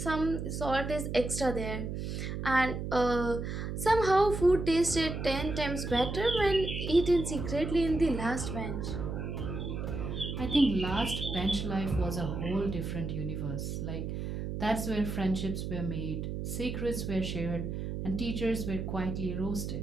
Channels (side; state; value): right; noise; hum, 4 dB below the sound